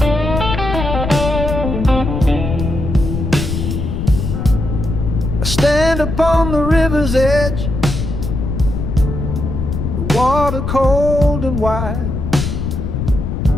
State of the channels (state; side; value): noise; left; rumble, 3 dB below the sound